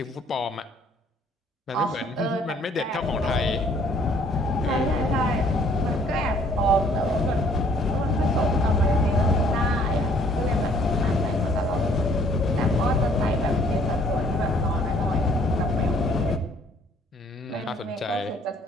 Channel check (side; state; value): both; normal; correlation 0.61